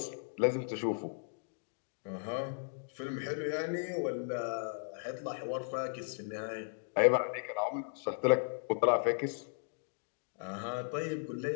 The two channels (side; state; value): right; silent; digital silence